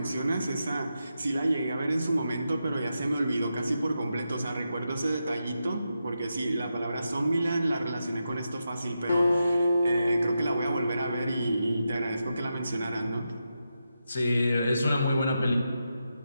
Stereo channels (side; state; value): both; inverted; correlation -0.87